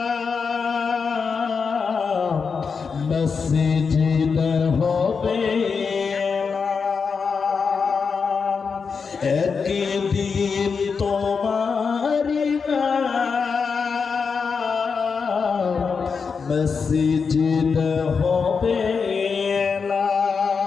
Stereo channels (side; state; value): right; quieter; 5.5 dB